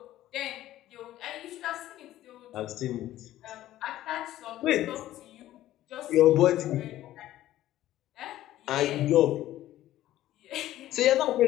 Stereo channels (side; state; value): right; quieter; 14.1 dB